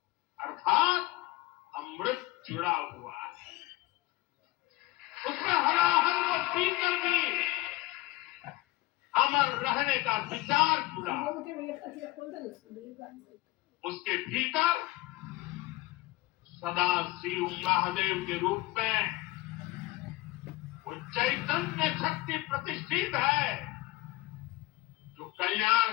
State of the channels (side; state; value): right; quieter; 19.2 dB